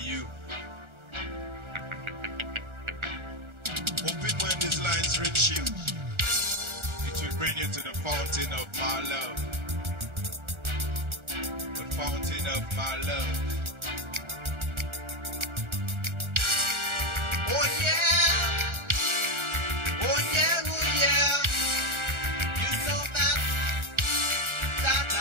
Hoping when these lines reach you, it will bring you to the fountain of my love. The fountain of my love. Oh yeah, oh yeah, oh yeah. You know that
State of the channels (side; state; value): left; late; 1.3 ms